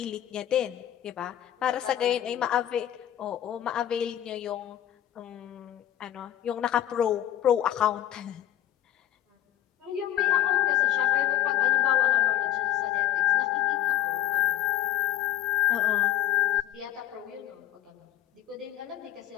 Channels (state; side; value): quieter; right; 11.9 dB